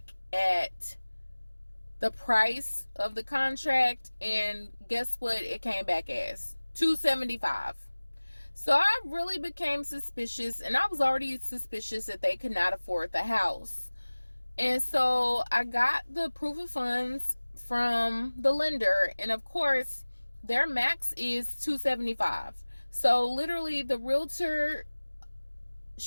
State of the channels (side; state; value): both; inverted; correlation -1.00